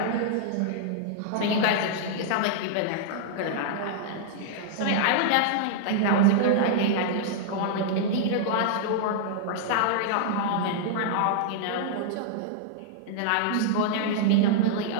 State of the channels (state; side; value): different; both; correlation -0.01